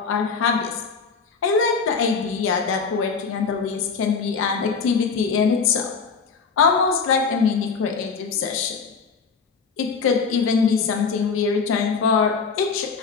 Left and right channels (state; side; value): quieter; right; 5.3 dB